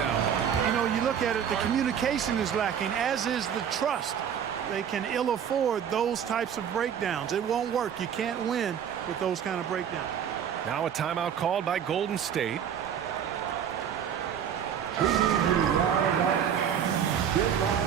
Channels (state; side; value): quieter; left; 8.5 dB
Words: You know, you look at it, the communication is lacking, as is the trust. They can ill afford those types of breakdowns. It won't work. You can't win with those kind of breakdowns. Now a timeout called by Golden State.